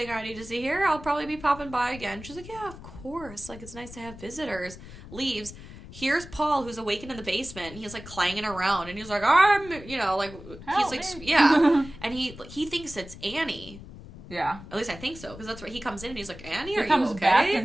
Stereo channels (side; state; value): left; noise; rumble, 15 dB below the sound